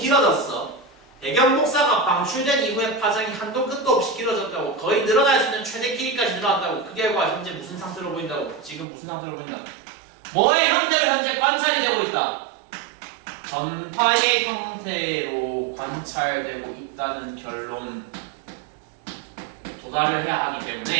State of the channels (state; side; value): drops out; left; at 8.8 s